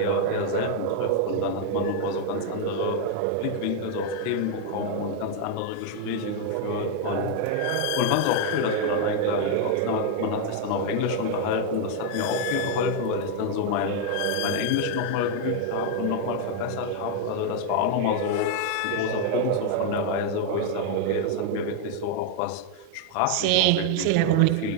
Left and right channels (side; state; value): both; different; correlation 0.00